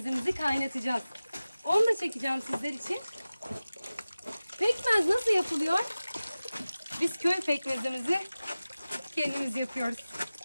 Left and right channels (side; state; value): both; inverted; correlation -0.96